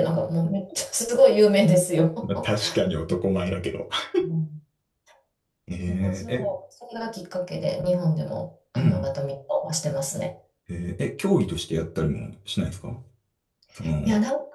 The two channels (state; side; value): identical; both; correlation 1.00